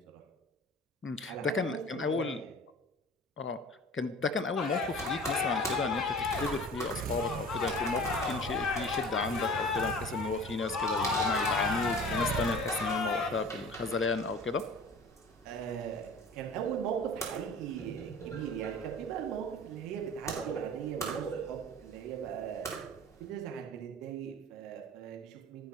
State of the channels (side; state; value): both; normal; correlation 0.42